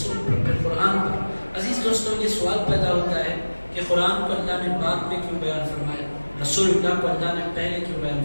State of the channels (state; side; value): inverted; both; correlation -1.00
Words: پر، پھر قرآن پر۔ عزیز دوستوں، یہ سوال پیدا ہوتا ہے کہ قرآن کو اللہ نے بعد میں کیوں بیان فرمایا، رسول اللہ کو اللہ نے پہلے کیوں بیان